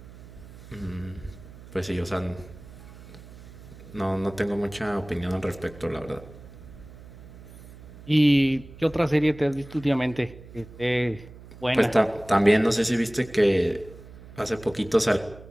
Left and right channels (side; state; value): right; noise; hum, 18 dB below the sound